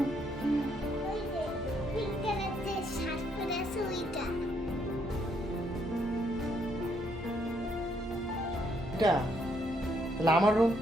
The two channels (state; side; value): normal; both; correlation 0.72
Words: এটা তাহলে আমার রুম।